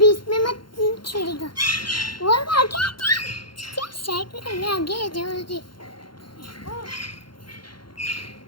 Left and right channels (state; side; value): late; right; 0.72 ms